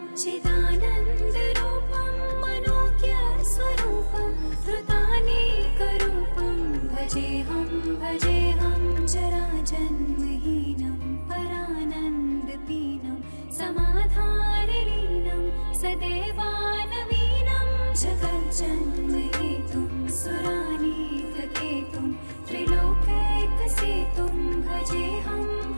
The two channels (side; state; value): both; inverted; correlation -1.00